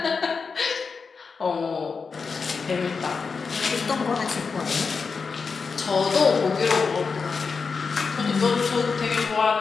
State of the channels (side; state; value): right; quieter; 5.1 dB